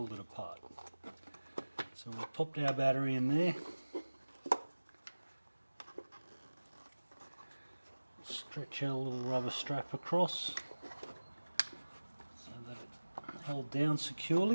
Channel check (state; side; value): inverted; both; correlation -1.00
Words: it apart. So we've popped our battery in there, stretch our little rubber strap across so that it's held down